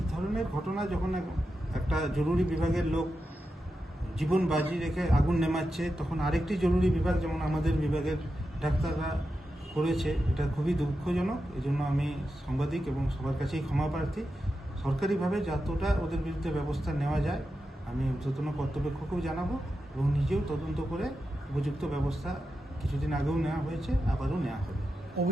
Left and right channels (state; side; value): normal; both; correlation 0.89